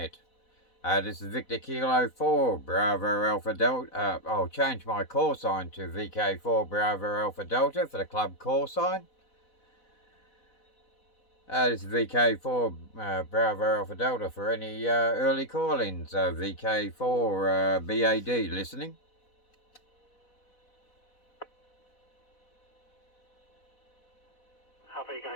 This is Victor Kilo 4, Bravo Alpha Delta. I'll change my call sign to VK4 Bravo Alpha Delta for the club call sign. This is VK4 Bravo Alpha Delta for any early call-ins. VK4BAD listening.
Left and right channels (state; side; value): late; right; 4.1 ms